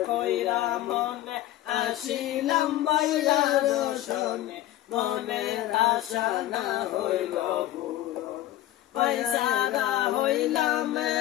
কইরা মনে আসিলাম বাইয়ার শোনে মনের আশা না হইল পূরণ পয়সারা হইলাম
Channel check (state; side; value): quieter; right; 14.4 dB